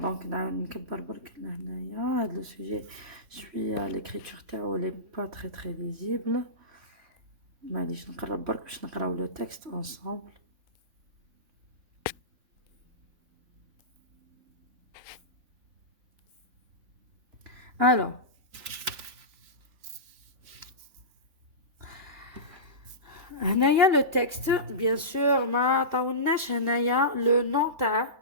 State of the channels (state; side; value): late; left; 3.2 ms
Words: نكبر برك لهنايا هذا le sujet. Je suis à l'écriture تاعو elle est pas très visible. معليش نقرب برك باش نقراو le texte ensemble. Alors, هنايا le texte bien sûr ما عطاولناش هنايا le nom تاع